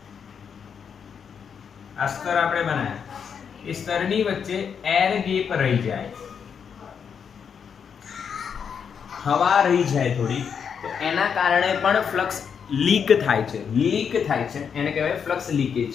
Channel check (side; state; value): right; quieter; 7.0 dB